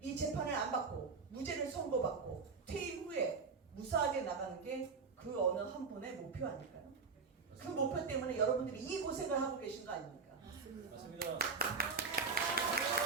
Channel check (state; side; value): quieter; left; 4.9 dB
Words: 이 재판을 안 받고 무죄를 선고받고 퇴임 후에 무사하게 나가는 게 그 어느 한 분의 목표 아닐까요? 그 목표 때문에 여러분들이 이 고생을 하고 계신 거 아닙니까? 맞습니다.